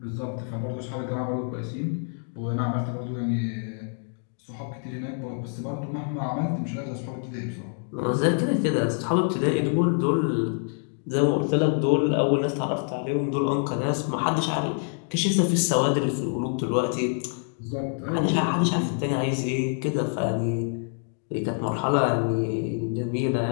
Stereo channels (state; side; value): silent; right; 61 dB below the other